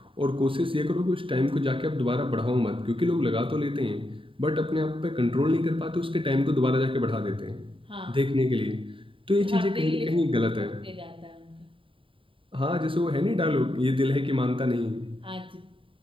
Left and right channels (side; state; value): left; late; 0.25 ms